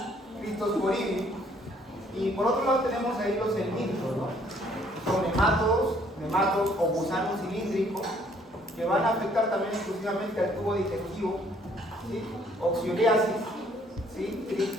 Cryptosporidium. Y por otro lado tenemos ahí los helmintos, ¿no? Son nematodos o gusanos cilíndricos que van a afectar también exclusivamente al tubo digestivo, ¿sí? Oxioriasis,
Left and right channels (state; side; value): normal; both; correlation 0.62